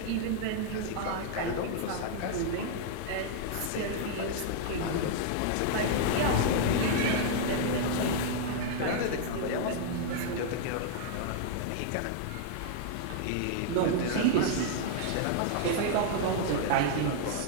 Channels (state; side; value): different; both; correlation -0.01